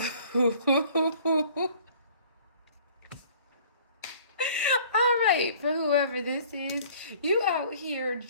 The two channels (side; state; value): both; inverted; correlation -0.52